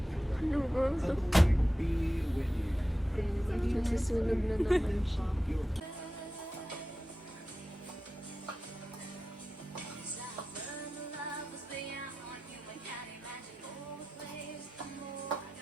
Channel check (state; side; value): normal; both; correlation 0.93